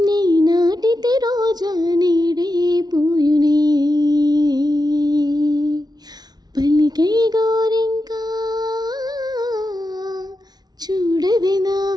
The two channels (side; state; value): left; late; 0.19 ms